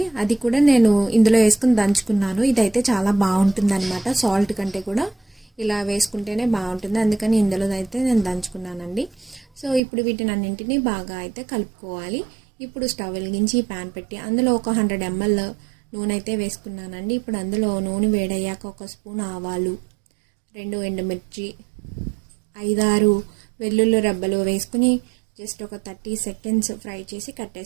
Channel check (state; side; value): drops out; left; at 9.8 s